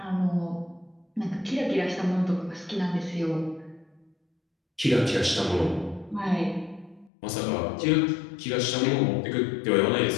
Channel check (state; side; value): drops out; right; at 7.1 s